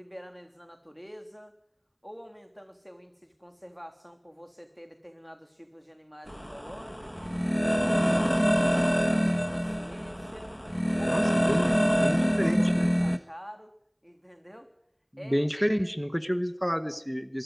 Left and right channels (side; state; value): both; identical; correlation 1.00